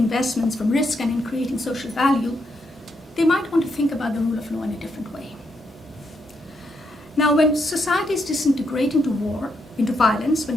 from risk, and in creating social value, they might want to think about the rule of law in a different way. Now, when societies disintegrate into violence,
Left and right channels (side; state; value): both; normal; correlation 0.79